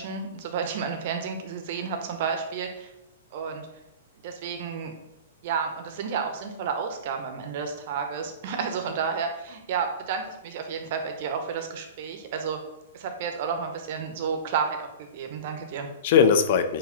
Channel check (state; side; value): inverted; both; correlation -0.31